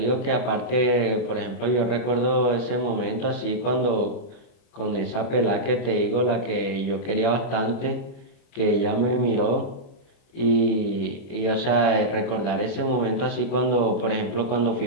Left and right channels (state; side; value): late; right; 30 ms